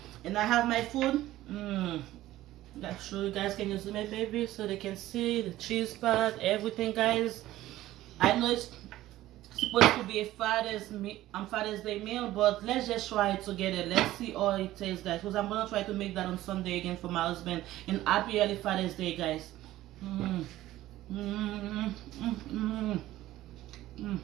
And I have my food. I'll show you guys. Can you zoom in, baby, so they can see the cheese part, everything, guys. I know it's supposed to be a Father's Day meal, but let's just try it together. Let's see how it tastes, guys, because I'm gonna try to make that on Sunday again for my husband. And happy early Father's Day, guys.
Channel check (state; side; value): quieter; left; 15.2 dB